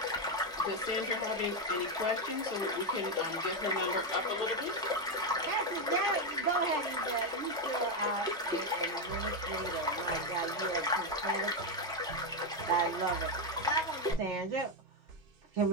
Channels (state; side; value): normal; both; correlation 0.06